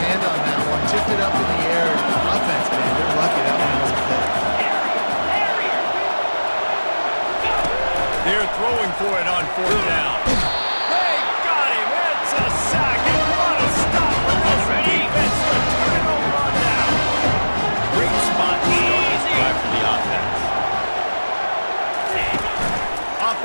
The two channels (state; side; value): inverted; both; correlation -1.00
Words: hand on that one, tipped it up in the air. Offense, man, they're lucky that one wasn't picked. They're throwing for it on fourth down. They got him. It's a sack, and what a stop for this defense to turn it over on down. Great spot to start this drive for the offense. Off